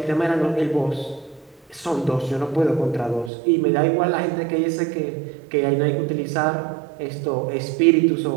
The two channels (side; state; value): left; drops out; at 3.3 s